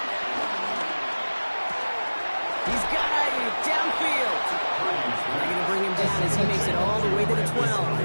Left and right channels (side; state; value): both; inverted; correlation -1.00